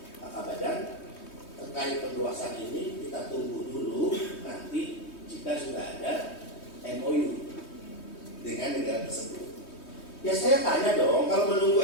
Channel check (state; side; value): late; right; 3.2 ms